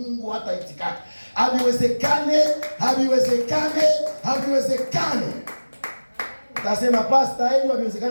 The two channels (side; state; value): both; inverted; correlation -1.00